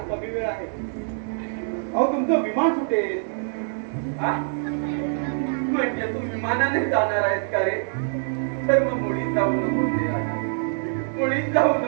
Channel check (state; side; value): silent; left; 59 dB below the other